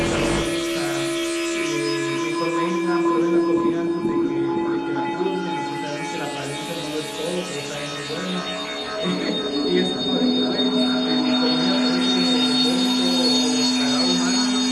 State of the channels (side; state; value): both; identical; correlation 1.00